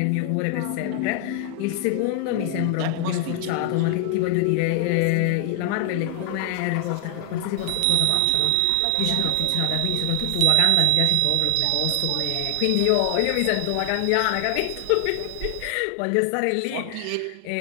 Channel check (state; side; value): different; both; correlation 0.00